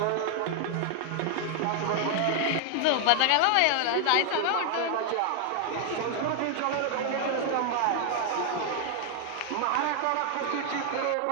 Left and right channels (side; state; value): both; different; correlation 0.00